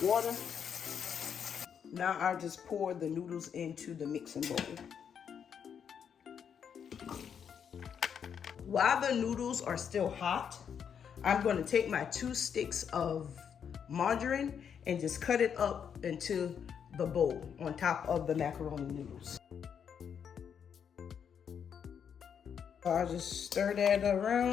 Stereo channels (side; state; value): right; quieter; 7.7 dB